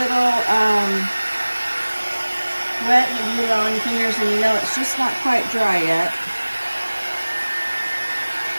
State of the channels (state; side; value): inverted; both; correlation -1.00